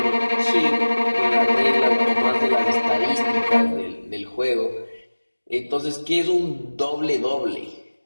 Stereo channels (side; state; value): both; inverted; correlation -1.00